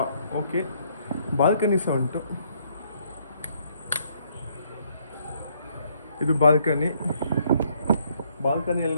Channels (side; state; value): both; inverted; correlation -0.68